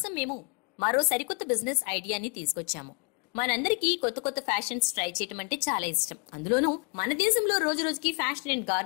మేము మరో సరికొత్త బిజినెస్ ఐడియాని తీసుకొచ్చాము. మనందరికీ కొత్త కొత్త ఫ్యాషన్స్ ట్రై చేయడం అంటే చాలా ఇష్టం. అందులోనూ మన దేశంలో రోజు రోజుకి ఫ్యాషన్ అండ్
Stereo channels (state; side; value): quieter; right; 33.5 dB